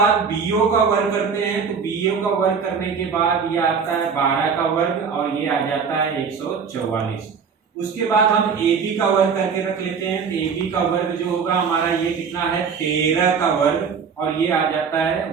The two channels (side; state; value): left; quieter; 6.0 dB